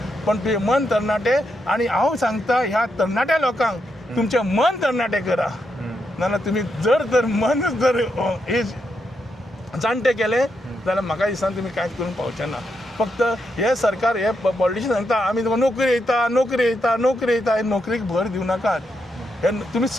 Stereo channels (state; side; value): normal; both; correlation 0.82